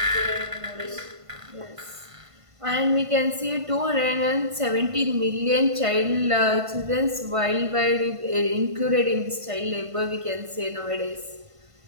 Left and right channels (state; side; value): late; left; 1.5 ms